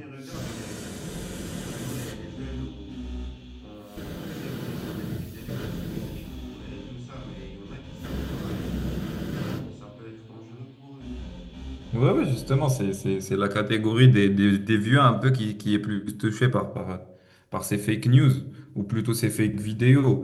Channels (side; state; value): both; identical; correlation 1.00